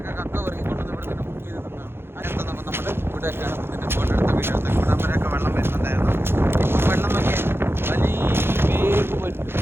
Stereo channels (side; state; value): left; late; 0.11 ms